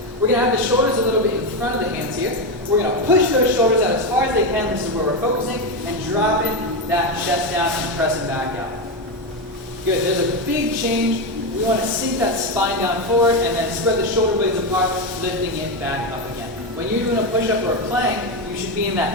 We're going to have the shoulders a little bit in front of the hands here. We're going to push those shoulders out as far as they can. This is where we're focusing, and dropping that chest down and pressing back out. Good. There's a big change. We want to sink that spine down forward and then spread the shoulder blades apart, lifting it back up again. When you're doing a push-up or a plank, you should be in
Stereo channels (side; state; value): both; normal; correlation 0.11